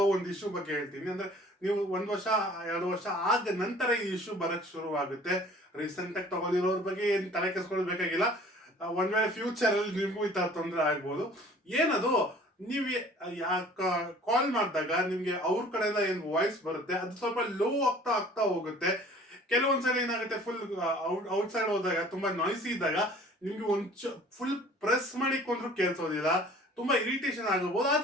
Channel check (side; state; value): both; normal; correlation 0.50